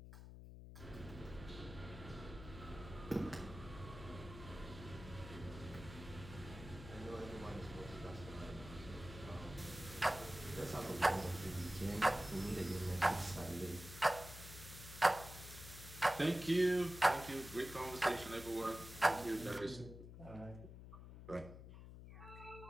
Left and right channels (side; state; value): left; noise; hum, 13 dB below the sound